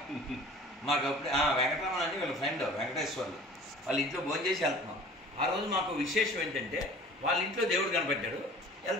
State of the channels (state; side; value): normal; both; correlation 0.45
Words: మాకు అప్పుడు వెంకటరమణ అని వీళ్ళ ఫ్రెండ్ వెంకటేశ్వర్లు వాళ్ళ ఇంట్లో భోజనం చేసి వెళ్తున్నాం. ఆ రోజు మాకు విశేషం ఏంటంటే వాళ్ళ ఇంట్లో దేవుడు కనపడ్డాడు.